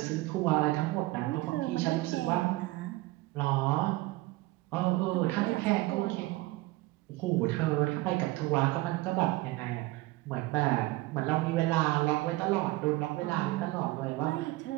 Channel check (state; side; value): quieter; left; 19.9 dB